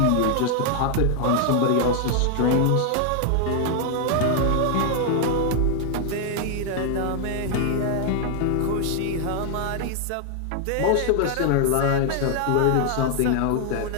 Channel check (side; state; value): both; different; correlation 0.00